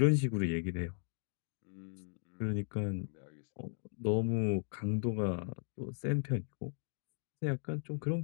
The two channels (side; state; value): right; silent; 53 dB below the other